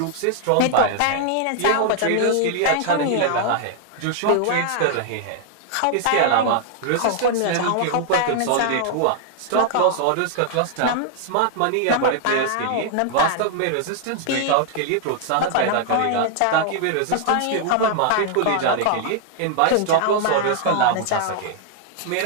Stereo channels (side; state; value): both; different; correlation 0.00